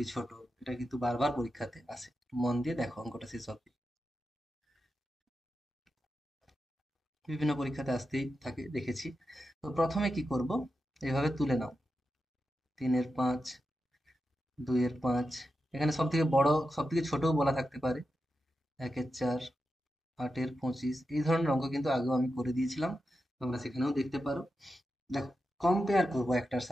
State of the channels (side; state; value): both; normal; correlation 0.89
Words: ছোট, এটা কিন্তু বারবার পরীক্ষাতে আসে। মন দিয়ে দেখো অঙ্কটা শেষ অবধি, বিভিন্ন পরীক্ষাতে আসতেই থাকে, দেখেছি। তো প্রথমে কি করব, এভাবে তুলে নাও। 3-এর 5, 2-এর 5, এখানে সব থেকে বড় সব থেকে ছোটও বলা থাকতে পারে। 1-এর 4, 8-এর 25, এই ধরনের অঙ্ক কিন্তু আগেও আমি করে দিয়েছিলাম, তোমরা সেখানেও দেখতে পারো। দেখো, কম্পেয়ার করব একটার